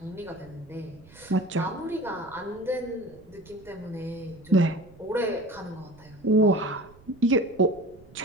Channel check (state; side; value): noise; right; rumble, 24 dB below the sound